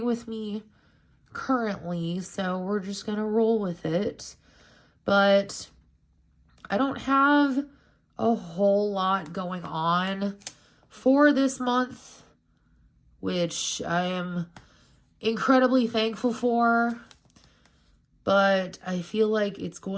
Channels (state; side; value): identical; both; correlation 1.00